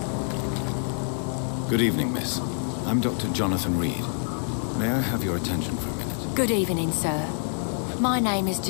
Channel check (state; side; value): silent; right; digital silence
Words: Good evening, miss. I'm Dr. Jonathan Reed. May I have your attention for a minute? Good evening, sir. My name is